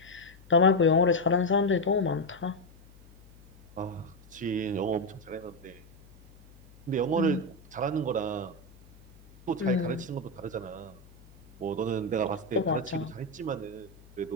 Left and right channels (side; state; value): left; noise; hum, 24 dB below the sound